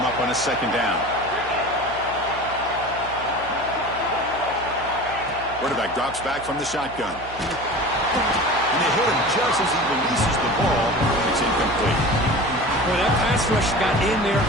up on a second down. Quarterback drops back from the shotgun. And they hit him just as he releases the ball. It's incomplete. Well, that pass rush got in there,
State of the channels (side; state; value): right; noise; hum, 16 dB below the sound